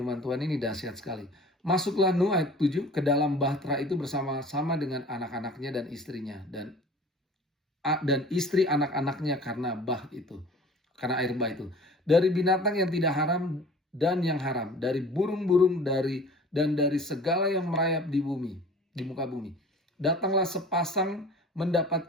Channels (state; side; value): normal; both; correlation 0.44